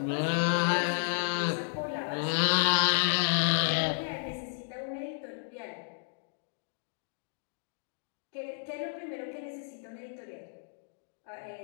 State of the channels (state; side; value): silent; right; digital silence